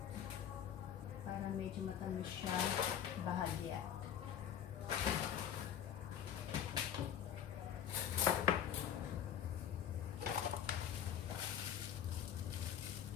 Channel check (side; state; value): right; quieter; 9.4 dB